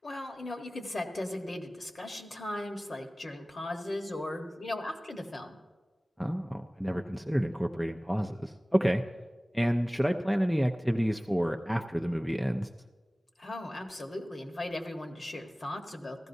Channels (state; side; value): normal; both; correlation 0.98